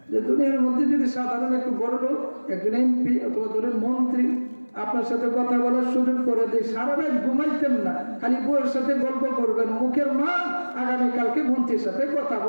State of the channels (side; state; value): both; inverted; correlation -1.00